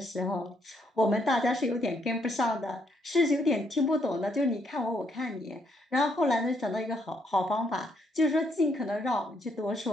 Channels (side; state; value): both; normal; correlation 0.73